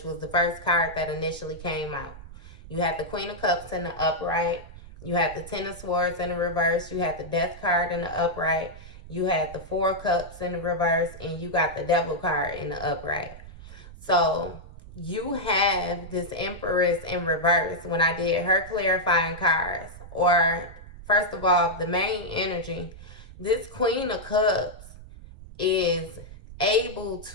was the first card that initially came out. You had the Queen of Cups in the upright. You had the Ten of Swords in the reverse. You had the Death card in the upright. You had the 4 cups in the reverse. And you got the Devil card in the upright. So you have this Empress in reverse when I did her clarifying cards. Or, first of all, the main energy. This Queen of Cups is able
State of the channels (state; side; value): noise; right; rumble, 16 dB below the sound